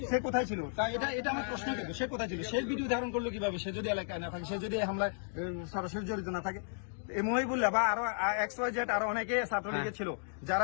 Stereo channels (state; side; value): silent; right; digital silence